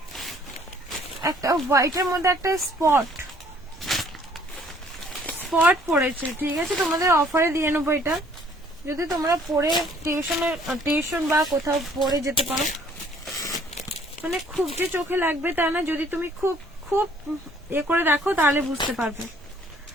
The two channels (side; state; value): both; normal; correlation 0.59